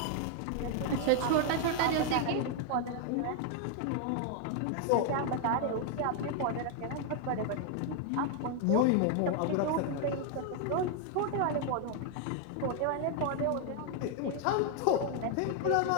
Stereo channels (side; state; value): both; different; correlation 0.00